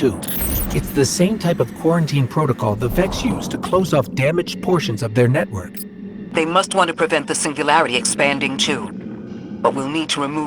It's the same type of quarantine protocol the Vex use to close off damaged portions of their network. They must want to prevent the singularity expanding too. But we'll need to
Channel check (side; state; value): both; identical; correlation 1.00